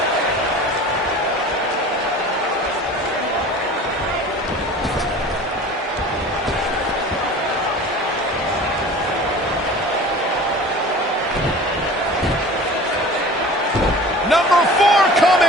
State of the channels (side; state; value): both; normal; correlation 0.41